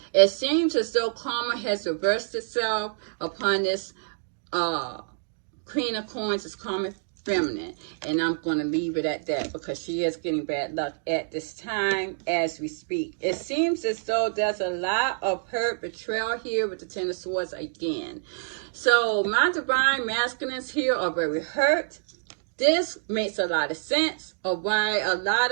It seems as though karma has reversed itself upon this Queen of Coins is karmic feminine. And I'm going to leave it at that because she is getting bad luck at this time as we speak. It seems as though there's a lot of hurt, betrayal here with the Ten of Swords again. So my divine masculines here are very hurt. This makes a lot of sense of why a lot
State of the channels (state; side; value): silent; left; digital silence